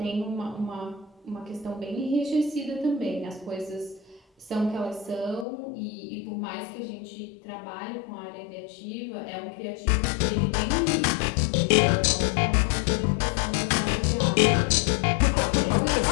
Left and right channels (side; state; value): right; drops out; at 5.5 s